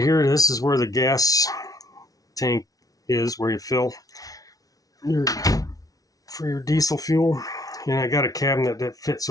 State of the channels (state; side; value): late; right; 0.18 ms